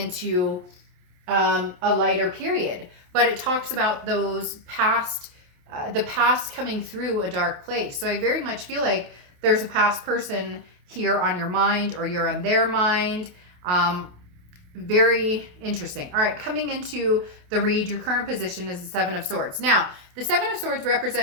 a lighter period. But it talks about those past, the past coming through a dark place. So I very much feel like there's a past person here on your mind, or you're on their mind. Very interesting. All right, coming into the read, your current position is the Seven of Swords. Now, the Seven of Swords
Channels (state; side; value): late; left; 28 ms